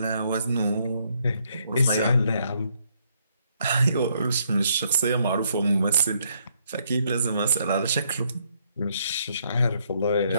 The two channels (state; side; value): inverted; both; correlation -0.71